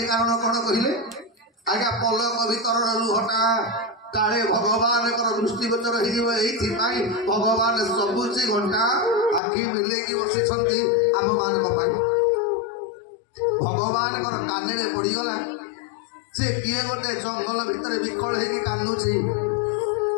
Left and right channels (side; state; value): right; drops out; at 9.4 s